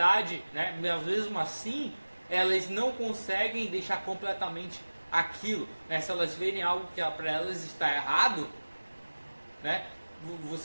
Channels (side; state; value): both; inverted; correlation -1.00